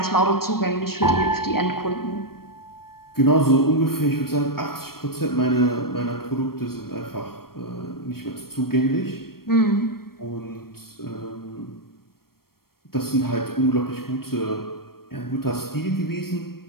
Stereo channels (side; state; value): right; late; 0.94 ms